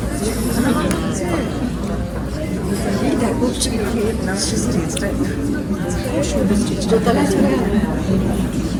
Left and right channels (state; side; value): identical; both; correlation 1.00